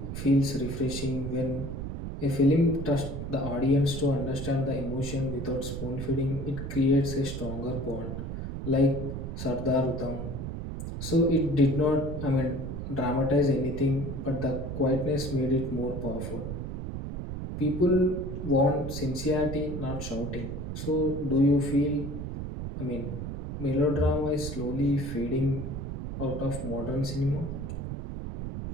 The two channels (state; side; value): noise; right; rumble, 6 dB below the sound